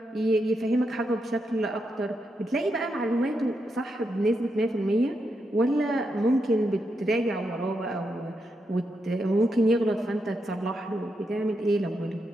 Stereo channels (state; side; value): normal; both; correlation 0.83